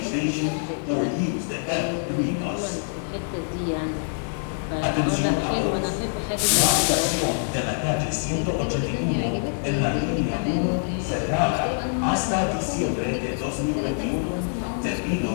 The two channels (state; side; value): silent; right; digital silence